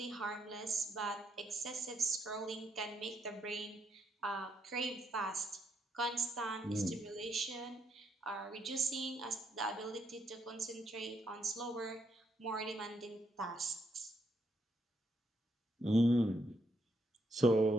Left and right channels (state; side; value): normal; both; correlation 0.75